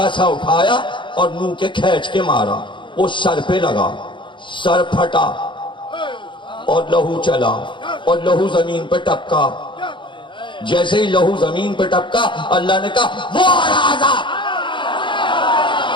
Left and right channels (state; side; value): late; right; 0.23 ms